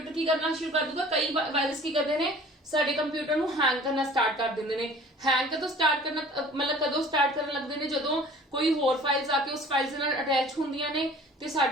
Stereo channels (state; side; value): normal; both; correlation 0.47